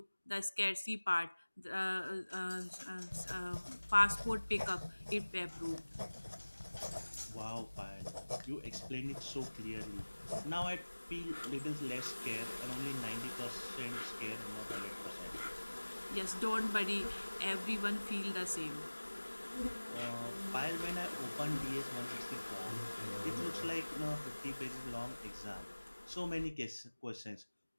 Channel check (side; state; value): both; inverted; correlation -1.00